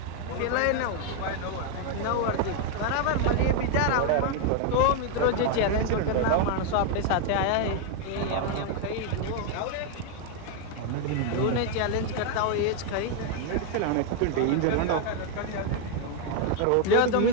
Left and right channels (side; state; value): both; different; correlation 0.01